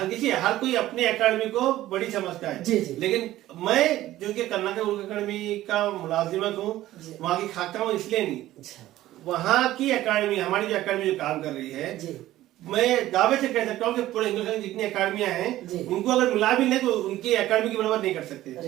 कोई अपनी अकादमी को बड़ी समझता है, लेकिन मैं जो कि कर्नाटक उर्दू अकादमी का मुलाजिमत हूँ, वहाँ की खाता हूँ, इसलिए नहीं, वहाँ की अकादमी, हमारी जो अकादमी जो काम कर रही है, मैं दावे से कह सकता हूँ कि पूरे हिंदुस्तान की जितनी अकादमियां हैं उनको अगर मिला भी लें तो उनकी अकादमी की बराबर नहीं कर सकते।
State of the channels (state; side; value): quieter; left; 14.9 dB